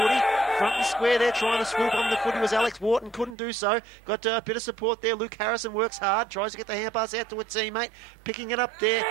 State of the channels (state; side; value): drops out; left; at 3.4 s